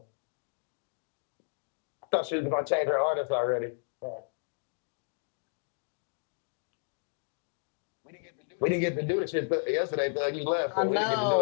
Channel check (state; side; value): silent; right; digital silence